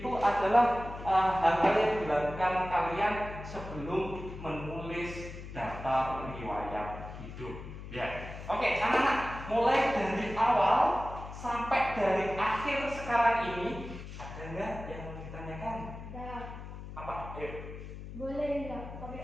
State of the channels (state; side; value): noise; left; hum, 11 dB below the sound